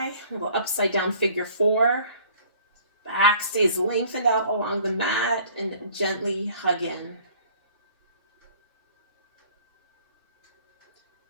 a little upside down figure 4. Back stays lengthened out along the mat and gently hug in.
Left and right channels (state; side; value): inverted; both; correlation -0.53